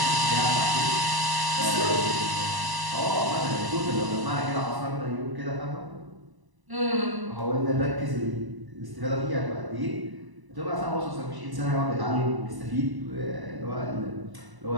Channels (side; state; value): left; late; 1.0 ms